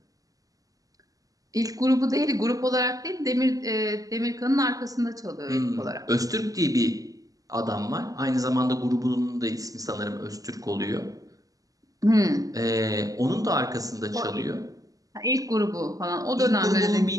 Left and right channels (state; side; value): late; left; 0.17 ms